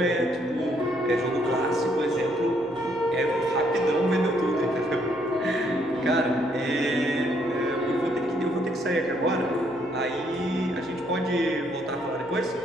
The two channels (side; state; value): right; noise; hum, 30 dB below the sound